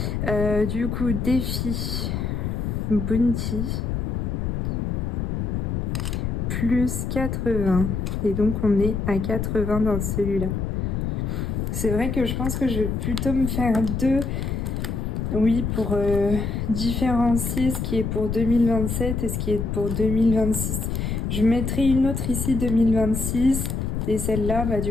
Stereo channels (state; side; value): noise; left; rumble, 1 dB below the sound